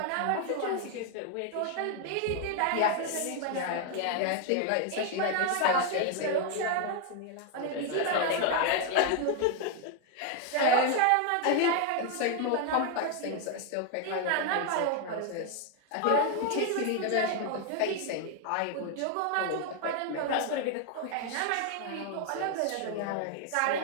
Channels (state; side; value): different; both; correlation 0.01